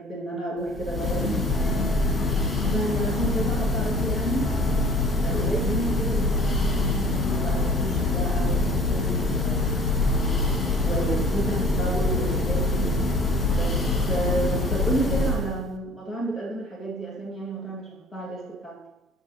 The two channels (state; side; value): normal; both; correlation 0.48